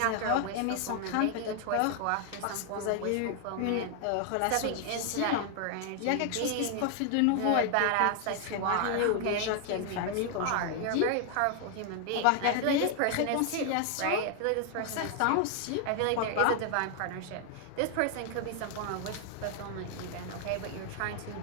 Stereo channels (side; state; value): both; different; correlation 0.00